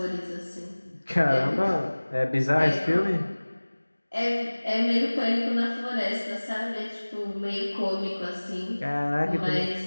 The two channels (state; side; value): inverted; both; correlation -1.00